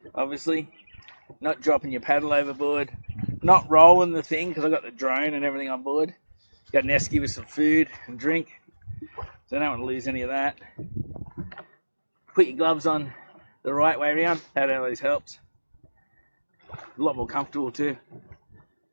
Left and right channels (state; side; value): inverted; both; correlation -1.00